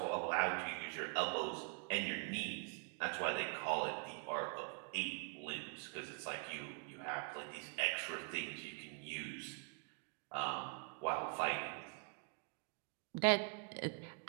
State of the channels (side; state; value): left; quieter; 39.9 dB